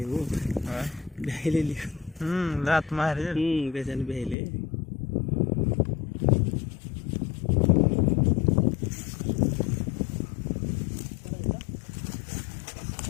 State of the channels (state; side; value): drops out; right; at 4.4 s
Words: हो बहिले लात मारे कशाने बहिले